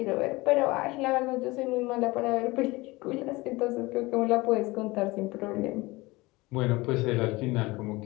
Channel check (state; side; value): quieter; right; 22.0 dB